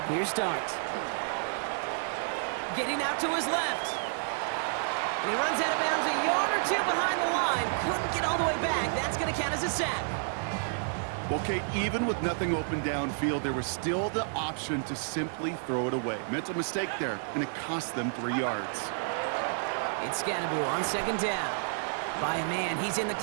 clear start. Getting out to his left. And he runs out of bounds a yard or two behind the line. Couldn't get all the way back. That's going to count as a sack. Well, Kate, even with nothing open downfield, there was still the option to simply throw it away. Mental mistake there, and it cost them 3 yards. It's Scannaboo on second down. By a man, he's in the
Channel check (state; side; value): silent; left; 58 dB below the other